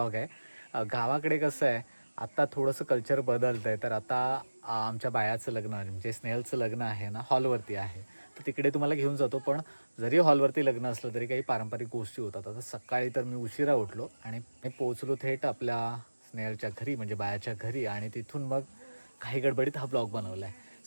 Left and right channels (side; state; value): both; inverted; correlation -1.00